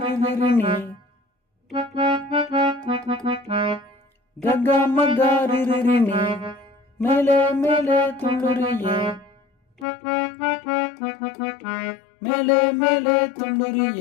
ரிரினி ககா மகா ரிரினி மேலே மேலே துள்ளுறியே மேலே மேலே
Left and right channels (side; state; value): right; drops out; at 9.9 s